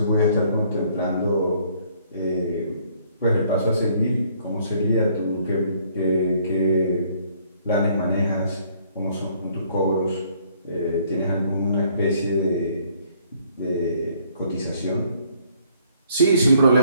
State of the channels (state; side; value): inverted; both; correlation -0.64